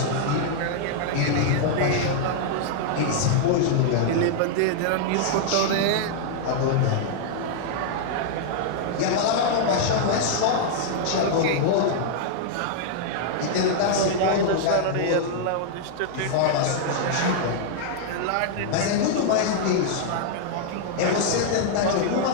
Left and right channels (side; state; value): both; different; correlation -0.01